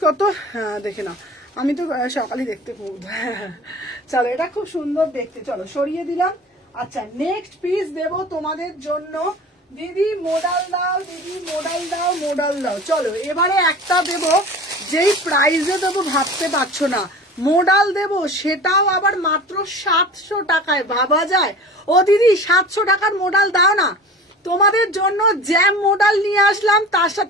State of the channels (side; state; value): both; normal; correlation 0.38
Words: কত, হ্যাঁ দেখে নাও, আমি তো সকালে দেখতে খুব, চলো এটা খুব সুন্দর দেখতে। চলো সরিয়ে দিলাম। আচ্ছা, নেক্সট পিস দেবো তোমাদের জন্য। দিদি মোডাল দাও, দিদি মোডাল দাও, মোডাল দাও। চলো এবারে একটা দেবো যেই প্রাইসে দেবো ভাবতে পারছো না, মোডাল দেবো সেটাও আবার মাত্র 700 টাকায়। ভাবা যায়? ও দিদি 700 টাকার মোডাল দাও না, তোমাদের জন্য জ্যাম মোডাল নিয়ে আসলাম, তার